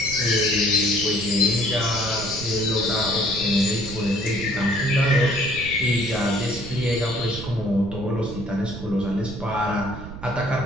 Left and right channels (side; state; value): right; noise; rumble, 11 dB below the sound